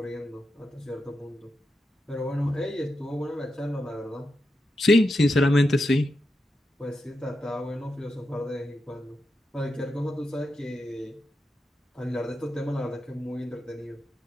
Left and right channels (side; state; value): both; normal; correlation 0.87